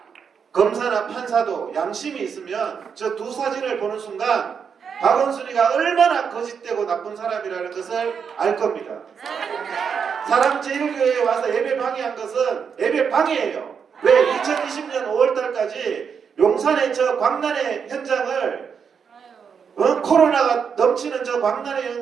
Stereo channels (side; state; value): left; quieter; 6.6 dB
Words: 검사나 판사도 양심이 있으면 저 두 사진을 보는 순간 박원순이가 얼마나 거짓되고 나쁜 사람이라는 것을 알 겁니다. 사랑제일교회에 와서 예배 방해한 것은 예배 방해예요. 왜? 2020년 5월달까지 용산의 저 광란의 현장을 코로나가 넘치는 저 광란의